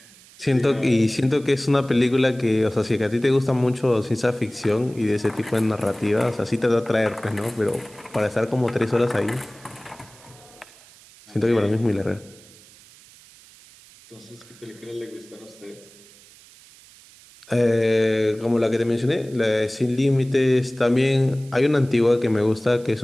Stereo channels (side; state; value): right; noise; hiss, 24 dB below the sound